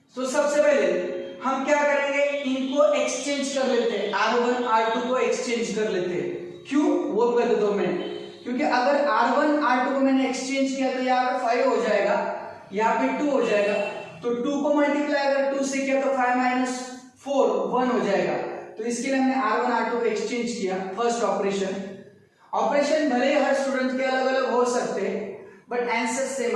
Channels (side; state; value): both; identical; correlation 1.00